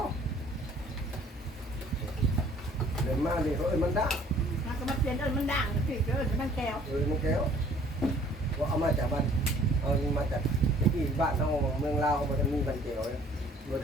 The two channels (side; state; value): both; normal; correlation 0.56